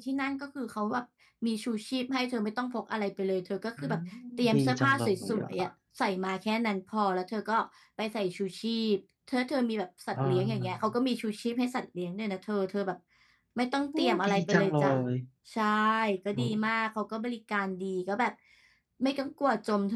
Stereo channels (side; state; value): both; identical; correlation 1.00